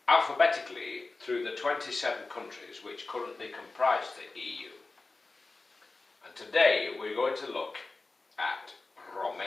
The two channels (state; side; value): quieter; right; 3.5 dB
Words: alphabetically through the 27 countries which currently comprise the EU. And today we're going to look at